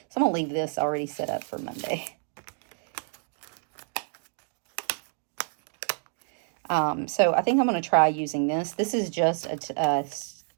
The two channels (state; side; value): silent; left; digital silence